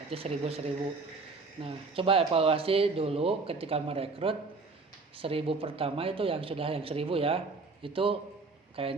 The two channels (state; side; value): quieter; left; 4.0 dB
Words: 1000. Nah, coba evaluasi dulu ketika merekrut 1000 pertama itu yang 1000 ya, itu